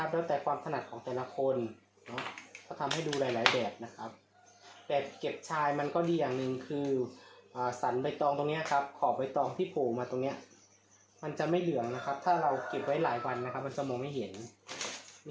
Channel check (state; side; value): identical; both; correlation 1.00